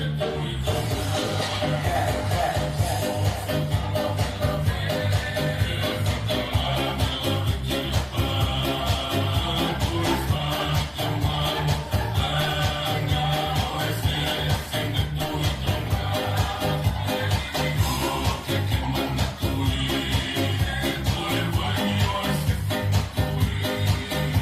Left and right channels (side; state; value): both; identical; correlation 1.00